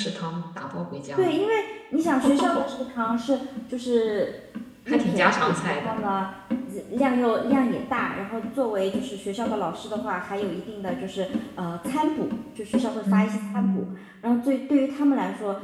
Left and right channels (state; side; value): identical; both; correlation 1.00